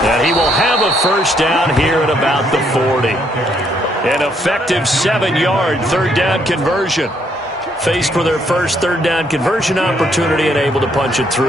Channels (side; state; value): both; normal; correlation 0.71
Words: And he will have a first down here at about the 40. An effective 7-yard third down conversion. Faced for their first third down conversion opportunity and able to punch it